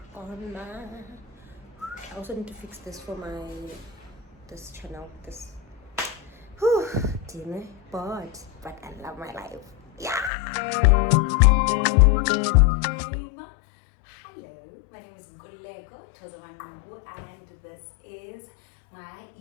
on my. I also need to fix this for this channel. This dinner bored, but I love my life. Yeah. Hello, my name is Nkululeko Thoza Manqoku, and this is my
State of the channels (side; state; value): right; drops out; at 10.3 s